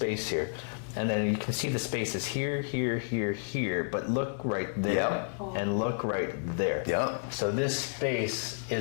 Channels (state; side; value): silent; right; digital silence